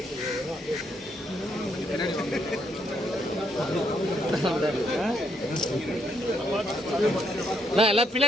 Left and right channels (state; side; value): normal; both; correlation 0.74